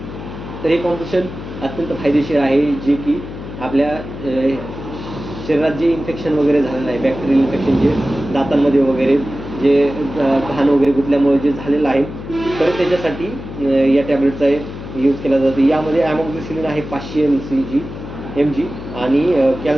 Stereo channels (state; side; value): noise; left; hum, 11 dB below the sound